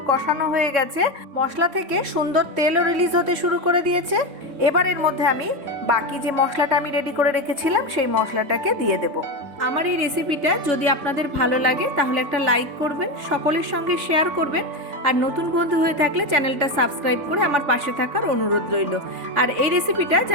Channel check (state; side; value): late; left; 3.5 ms